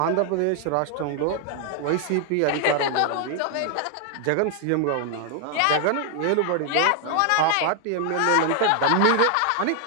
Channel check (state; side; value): different; both; correlation 0.00